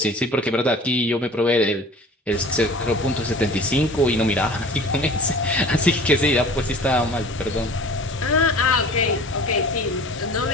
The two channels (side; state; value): both; normal; correlation 0.44